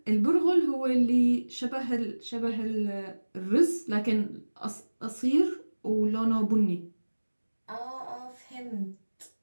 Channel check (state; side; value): inverted; both; correlation -1.00